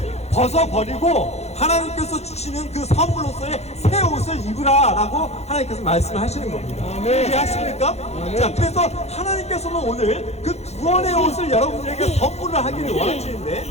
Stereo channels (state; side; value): late; right; 0.31 ms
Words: 벗어버리고 하나님께서 주시는 그 선물로서의 새 옷을 입으라 라고 하나님께서 말씀하시는 겁니다. 이해하십니까? 자, 그래서 하나님께서는 오늘 그 구원의 옷을 여러분들에게 선물을 하기를 원하시는데